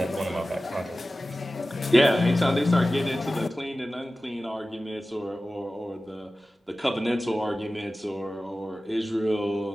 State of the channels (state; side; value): normal; both; correlation 0.96